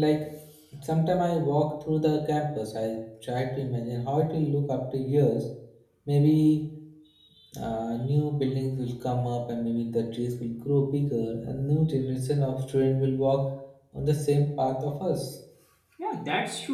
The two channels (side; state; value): both; identical; correlation 1.00